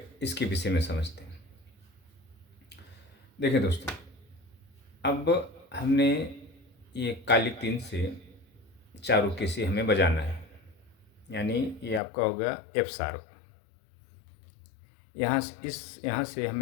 इसके विषय में समझते हैं। देखिए दोस्तों, अब हमने ये काली तीन से चारुकेसी हमें बजाना है, यानी ये आपका होगा एफ शार्प। यहाँ से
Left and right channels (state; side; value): drops out; right; at 12.0 s